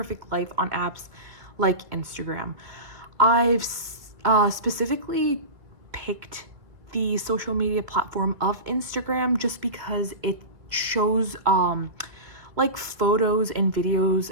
life on apps like Instagram. I've specifically picked the social media platform of Instagram just because it shows like photos and videos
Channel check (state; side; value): late; left; 2.2 ms